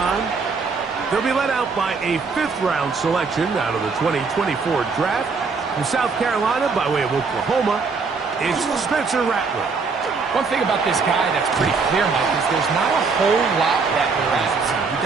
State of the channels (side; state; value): left; quieter; 4.7 dB